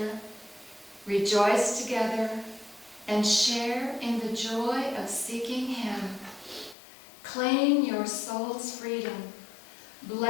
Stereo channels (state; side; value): drops out; right; at 6.8 s